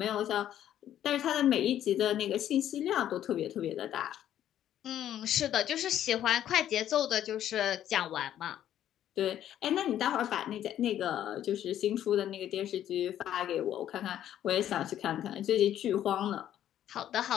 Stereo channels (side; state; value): right; quieter; 11.2 dB